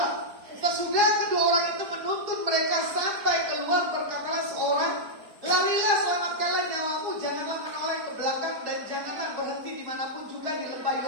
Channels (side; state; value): left; late; 4.8 ms